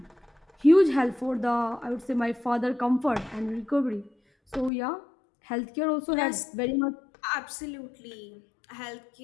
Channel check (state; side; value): drops out; right; at 4.7 s